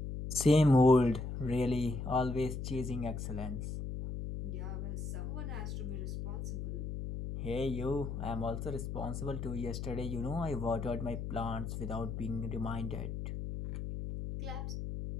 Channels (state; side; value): noise; left; hum, 5 dB below the sound